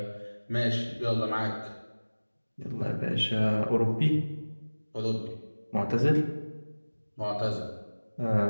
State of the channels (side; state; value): both; inverted; correlation -1.00